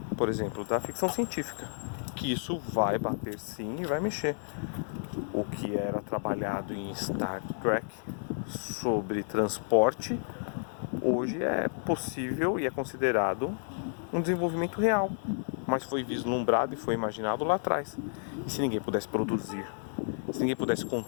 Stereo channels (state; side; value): silent; right; digital silence